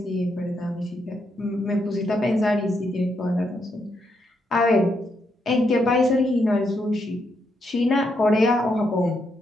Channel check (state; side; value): normal; both; correlation 0.79